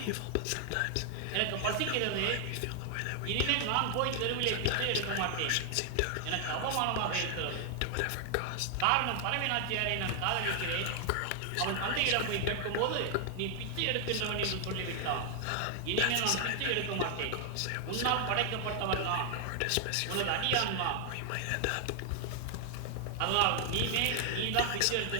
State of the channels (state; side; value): different; both; correlation 0.00